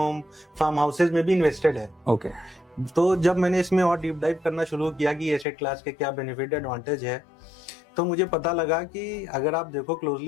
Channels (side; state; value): right; drops out; at 5.5 s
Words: farm houses में भी इन्वेस्टेड है। ओके। तो जब मैंने इसमें और डीप डाइव करना शुरू किया कि एसेट क्लास के क्या बेनिफिट एडवांटेज है, तो मुझे पता लगा कि अगर आप देखो